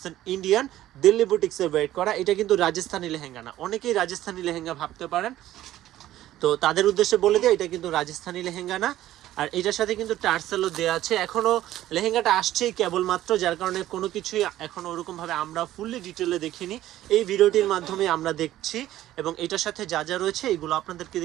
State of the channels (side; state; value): left; quieter; 13.9 dB